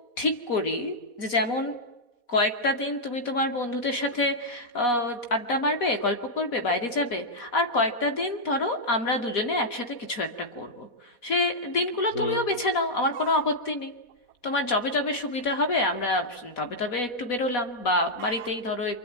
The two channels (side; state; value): right; late; 4.1 ms